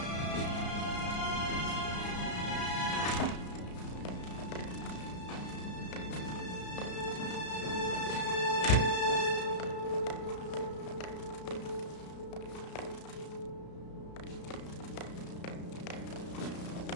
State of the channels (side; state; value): right; late; 33 ms